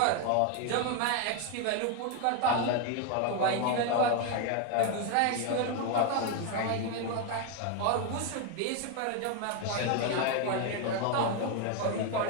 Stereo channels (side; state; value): both; different; correlation 0.01